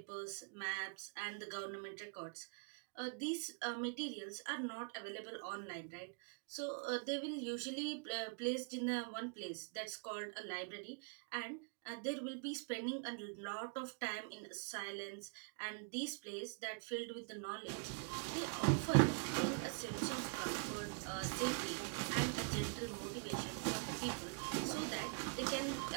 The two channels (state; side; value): quieter; left; 35.5 dB